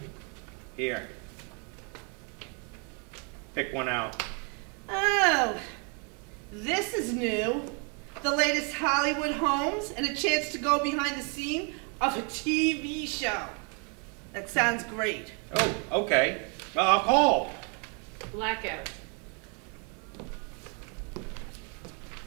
Here. Pick one out. Oh, this is new. The latest Hollywood homes and a chance to go behind the scene of a TV show. That sounds great. Oh, okay. Well, I'll call. Blackout.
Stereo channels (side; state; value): left; quieter; 36.9 dB